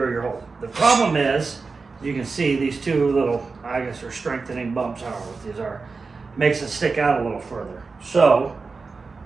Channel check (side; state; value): left; quieter; 4.3 dB